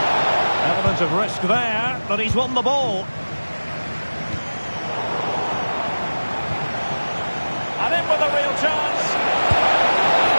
Of risk there, but he's won the ball. And in with a real chance.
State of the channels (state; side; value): inverted; both; correlation -1.00